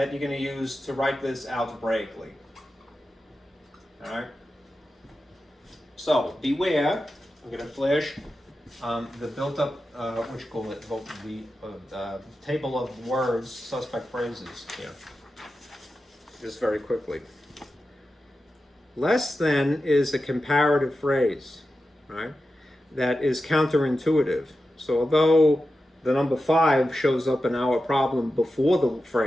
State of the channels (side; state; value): both; normal; correlation 0.91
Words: you're going to use to write this algebraically, All right. So beware. I'm going to flash the built-up, what you call it, the table of words, suspect phrases here. Just very quickly. Less than is a comparative phrase, right? That is counterintuitive. So although the number 5 shows up in our problem before the